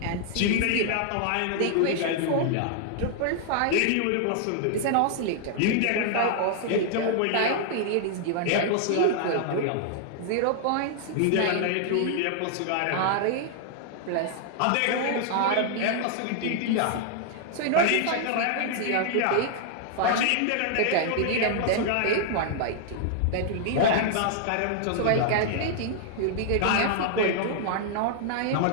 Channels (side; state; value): both; different; correlation -0.01